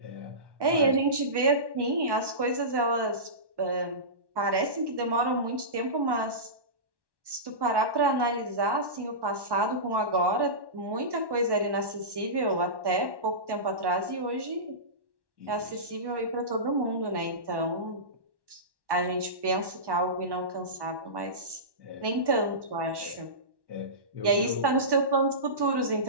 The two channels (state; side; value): late; left; 1.1 ms